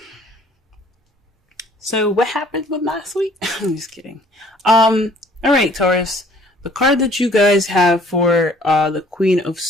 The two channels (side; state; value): both; normal; correlation 0.57